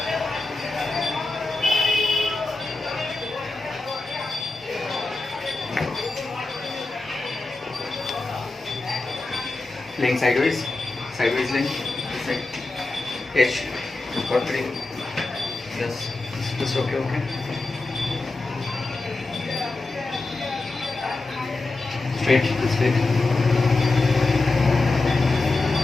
Laying sideways. Sideways laying. This side. H. Got 3. Yes. Just okay, okay. Straight, straight.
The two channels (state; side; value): quieter; right; 3.3 dB